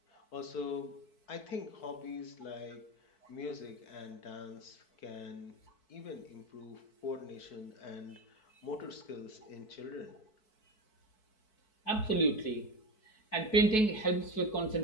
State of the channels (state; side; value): late; right; 4.6 ms